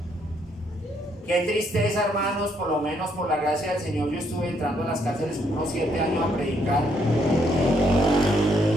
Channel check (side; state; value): both; normal; correlation 0.72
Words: Qué tristeza, hermanos, por lo menos por la gracia del Señor, yo estuve entrando a las cárceles unos 7 años a predicar